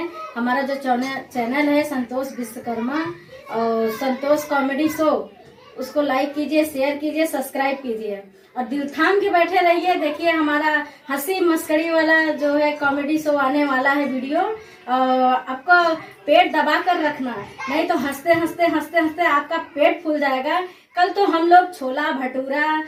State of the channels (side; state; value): both; identical; correlation 1.00